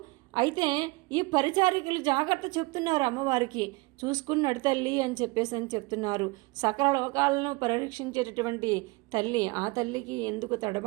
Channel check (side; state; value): left; quieter; 24.6 dB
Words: అయితే ఈ పరిచారికలు జాగ్రత్త చెప్తున్నారు అమ్మవారికి, చూసుకుని నడితల్లి అని చెప్తున్నారు. సకల లోకాలను పరిరక్షించేటటువంటి తల్లి, ఆ తల్లికి ఎందుకు